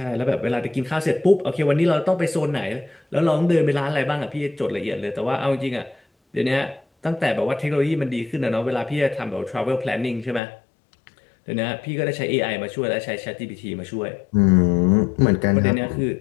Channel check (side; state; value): right; drops out; at 10.4 s